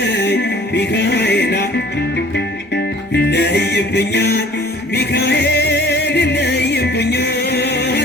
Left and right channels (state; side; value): noise; right; rumble, 30 dB below the sound